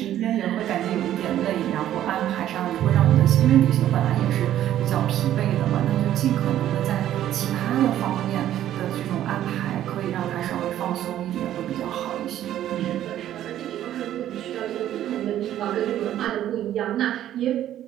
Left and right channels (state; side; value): quieter; left; 12.0 dB